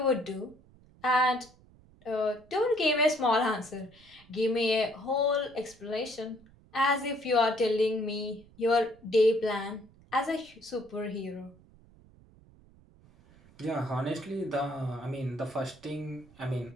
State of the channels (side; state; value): right; noise; rumble, 26 dB below the sound